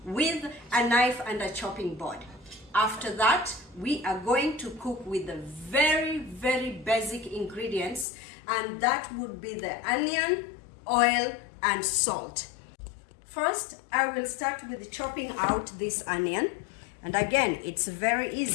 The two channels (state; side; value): drops out; right; at 8.1 s